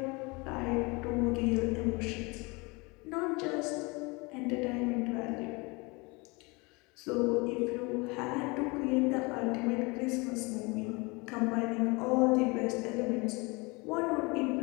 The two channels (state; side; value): quieter; right; 26.9 dB